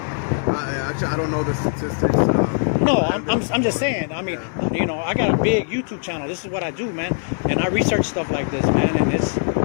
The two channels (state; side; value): silent; right; digital silence